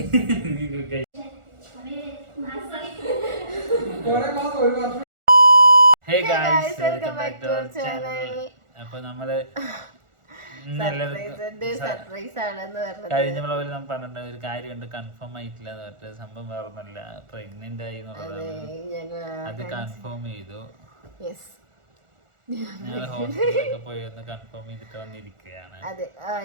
Hey guys, welcome back to our channel. അപ്പൊ നമ്മള് കഴിഞ്ഞ വ്ളോഗിൽ നമ്മൾ പറഞ്ഞിട്ട് ഒരു കാര്യമുണ്ട്, കൺഫേം ആയിട്ടില്ല എന്ന് പറഞ്ഞിട്ട്. സംഭവം വേറൊന്നുമല്ല, പ്രഗ്നന്റ് ആയി എന്നുള്ളതാണ്. അത് കൺഫേം ചെയ്തു. ഞങ്ങൾ ഹോസ്പിറ്റലിലൊക്കെ പോയി ഒന്ന് കൺഫേം ചെയ്തിട്ട് വന്നിരിക്കുകയാണ്. അതെ,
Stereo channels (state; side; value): late; left; 1.4 ms